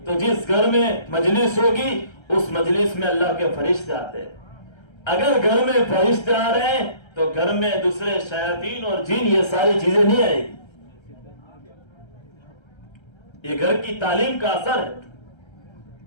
تو جس گھر میں مجلس ہوگی اس مجلس میں اللہ کے فرشتے آتے ہیں۔ اگر گھر میں فرشتے آ رہے ہیں تو گھر میں دوسرے شیاطین اور جن یہ ساری چیزیں نہیں آئے گی۔ یہ گھر کی تعلیم کا اثر ہے۔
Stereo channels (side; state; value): right; late; 1.3 ms